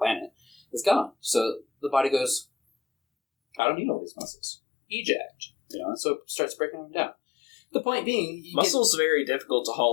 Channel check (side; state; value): right; drops out; at 3.6 s